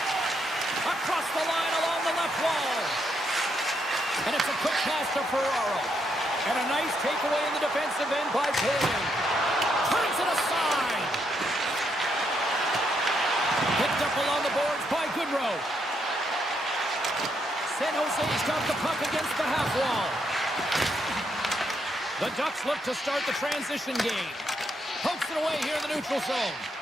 Across the line along the left wall. And it's a quick pass to Ferraro. And a nice takeaway in the defensive end by Taylor. Turns it aside. Picked up along the boards by Goodrow. San Jose's got the puck against the half wall. The Ducks look to start the transition game. Pokes it away here in the neutral zone.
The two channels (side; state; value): both; normal; correlation 0.77